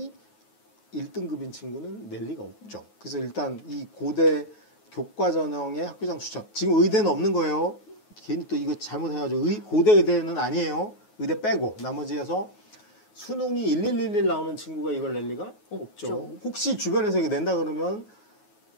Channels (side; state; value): right; late; 9.4 ms